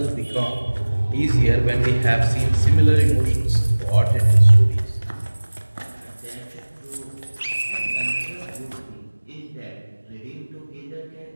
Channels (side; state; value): both; inverted; correlation -1.00